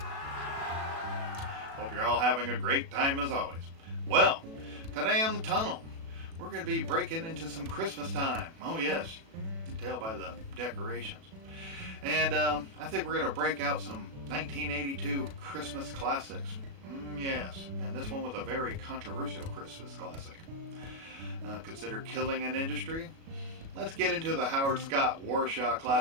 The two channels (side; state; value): left; late; 36 ms